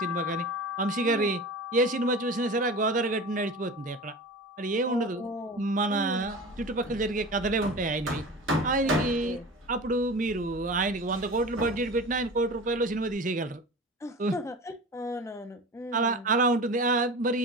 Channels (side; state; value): both; normal; correlation 0.34